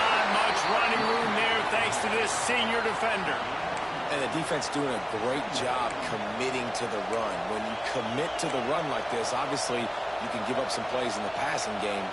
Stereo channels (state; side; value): identical; both; correlation 1.00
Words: much running room there thanks to this senior defender. And the defense doing a great job committing to the run. When you commit to the run like this, obviously you can give up some plays in the passing game,